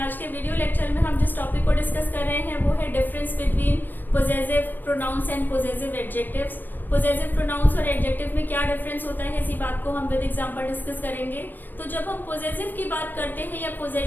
आज के video lecture में हम जिस टॉपिक को डिस्कस कर रहे हैं वो है difference between possessive pronouns and possessive adjectives. Possessive pronouns और एडजेक्टिव में क्या डिफरेंस होता है, इसी बात को हम विद एग्जांपल डिस्कस करेंगे। तो जब हम पोजेसिव की बात करते हैं या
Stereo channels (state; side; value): late; right; 0.091 ms